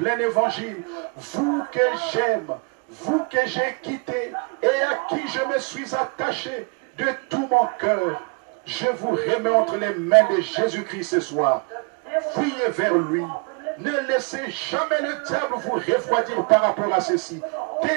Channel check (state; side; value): quieter; left; 35.6 dB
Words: évangile, vous que j'aime, vous que j'ai quitté et à qui je me suis attaché de tout mon cœur. Je vous remets entre les mains de Jésus-Christ ce soir. Fuyez vers lui. Ne laissez jamais le diable vous refroidir par rapport à ceci.